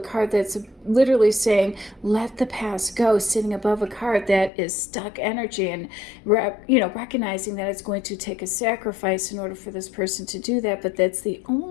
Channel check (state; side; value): drops out; right; at 4.5 s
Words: card that's literally saying let the past go, sitting above a card that is stuck energy, and recognizing that it's going to take a sacrifice in order for this person to do that, but that's the